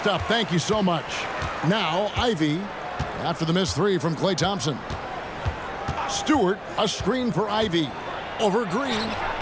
Thank you so much. Now, Ivey, after the missed 3 from Klay Thompson. Stewart, a screen for Ivey. Over Green.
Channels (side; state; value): both; identical; correlation 1.00